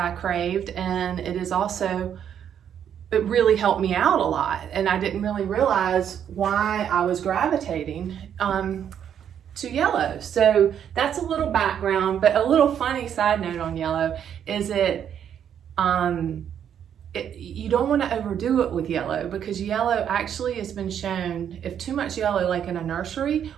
craved, and it really helped me out a lot. And I didn't really realize why I was gravitating to yellow. So that's a little background, but a little funny side note on yellow is you don't want to overdo it with yellow, because yellow actually has been shown, if too much yellow, like in a nursery,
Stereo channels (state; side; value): quieter; left; 9.0 dB